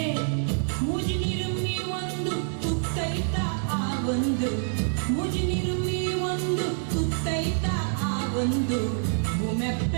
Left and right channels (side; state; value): left; silent; digital silence